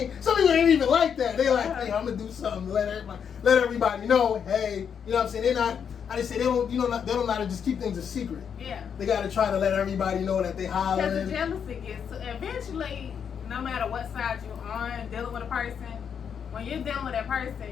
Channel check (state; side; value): quieter; right; 7.5 dB